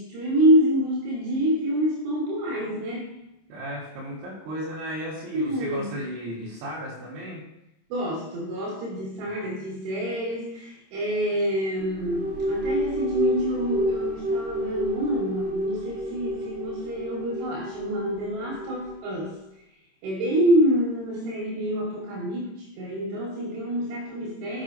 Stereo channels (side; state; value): left; late; 26 ms